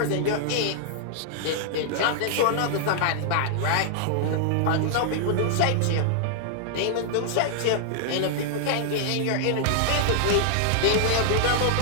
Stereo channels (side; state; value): both; different; correlation -0.01